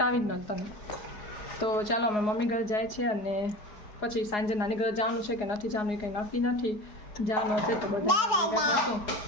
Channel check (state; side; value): late; right; 4.8 ms